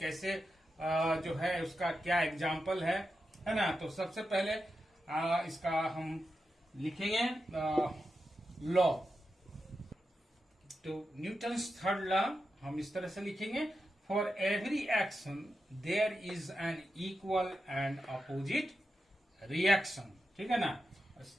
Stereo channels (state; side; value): normal; both; correlation 0.89